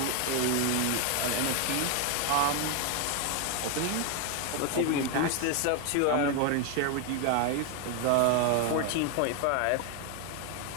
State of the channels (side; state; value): both; different; correlation 0.01